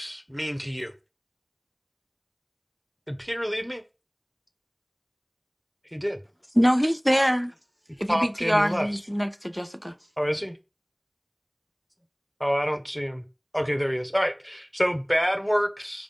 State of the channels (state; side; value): identical; both; correlation 1.00